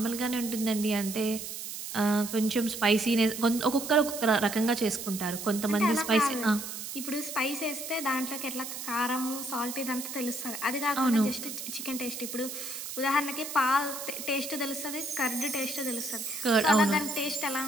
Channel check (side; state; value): right; noise; hiss, 8 dB below the sound